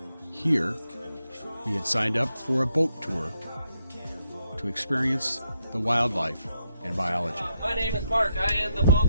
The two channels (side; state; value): both; inverted; correlation -0.80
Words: Here, we had signed up for a boat tour to experience the wildlife and biology. My name is Mark. I am the